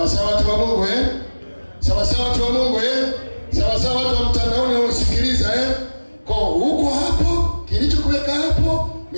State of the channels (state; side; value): inverted; both; correlation -1.00